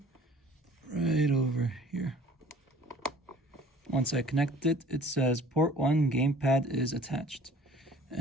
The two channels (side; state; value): both; normal; correlation 0.50